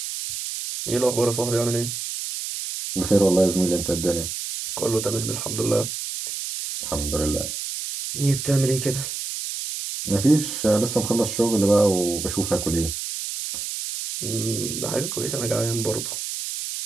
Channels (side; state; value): right; noise; hiss, 5 dB below the sound